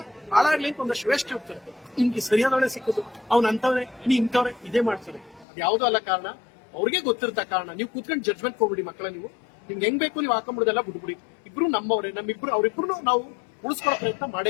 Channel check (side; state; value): right; drops out; at 5.5 s